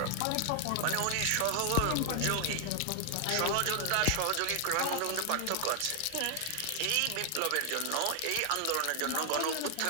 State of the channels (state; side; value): different; both; correlation 0.00